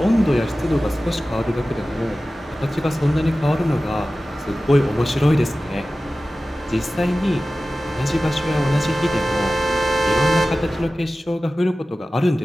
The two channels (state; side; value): normal; both; correlation 0.96